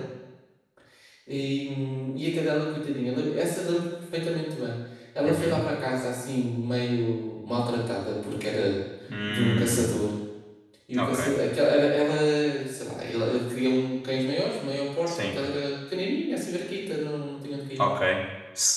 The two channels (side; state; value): both; identical; correlation 1.00